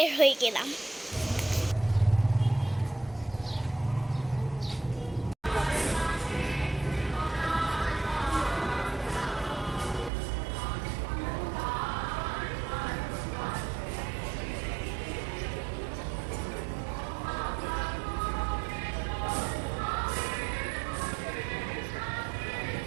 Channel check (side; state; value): left; drops out; at 10.1 s